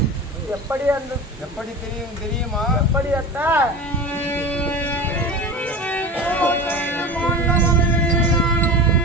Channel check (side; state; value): both; normal; correlation 0.29